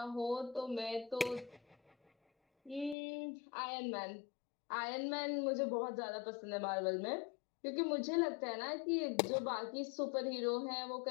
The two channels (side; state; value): right; drops out; at 3.0 s